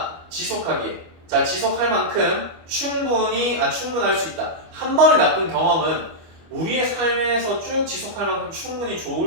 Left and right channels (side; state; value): left; late; 25 ms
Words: 지속하기에 지속할 만큼 충분할 수 있다. 한 번의 나쁜 경험은 우리의 삶에서 쭉 지속할 만큼 충분히